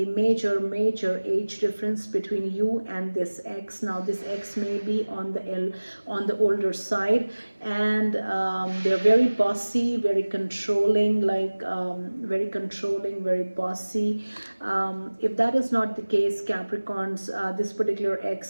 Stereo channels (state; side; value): inverted; both; correlation -1.00